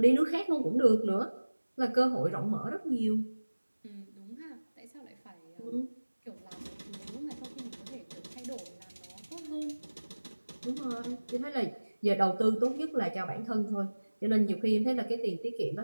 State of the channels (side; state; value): both; inverted; correlation -1.00